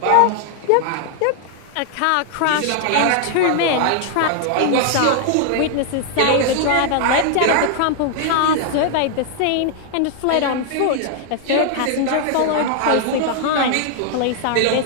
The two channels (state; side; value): different; both; correlation 0.00